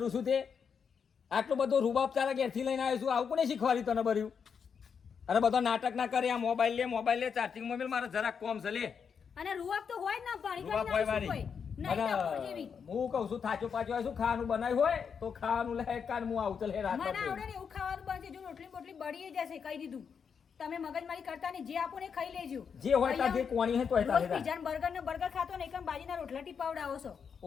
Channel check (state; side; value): quieter; right; 6.6 dB